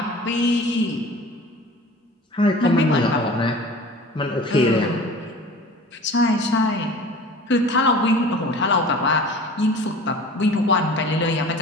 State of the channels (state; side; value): normal; both; correlation 0.41